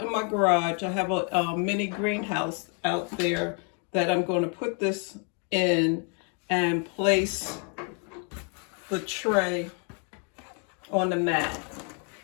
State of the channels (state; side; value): quieter; right; 39.4 dB